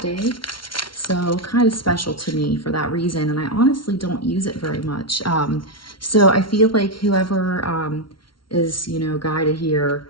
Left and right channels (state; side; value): late; right; 0.73 ms